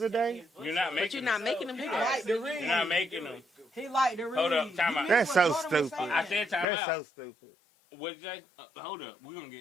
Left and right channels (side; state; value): right; drops out; at 6.7 s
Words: a day? You're not But making you're not them. making them do He that. like to read. You're not making them. He like to read. Hold up, time You out. missed That's what so Jordan was stupid. saying. I said time That's out. so stupid. What'd you say? Hold up. We're going to